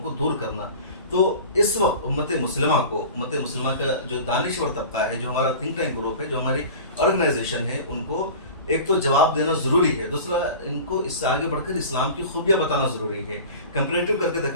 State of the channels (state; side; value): inverted; both; correlation -0.37